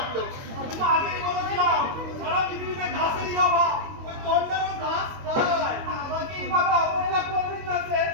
আমি তো আগেই বলেছিলাম সারা পৃথিবীতে ঘাসেরই অভাব, ওই গন্ডারও ঘাস খায়। আমাকে এইভাবে অবহেলা করবেন না স্যার,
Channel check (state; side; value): late; left; 22 ms